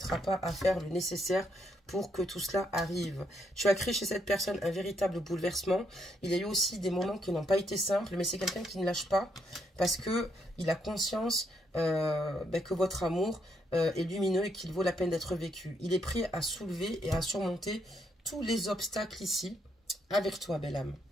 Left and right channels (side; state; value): both; normal; correlation 0.75